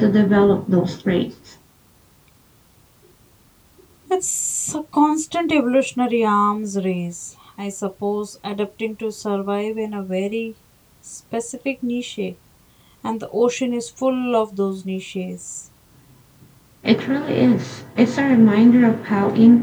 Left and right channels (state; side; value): identical; both; correlation 1.00